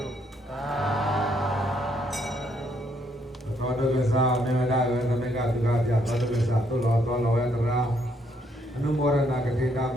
ုသာဓု သောတကသာမေမဒါဝေသမကသုခပြသောတကသာသုလောသောလောယတရာအနုမောရဏကတိတာဘ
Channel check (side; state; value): both; normal; correlation 0.71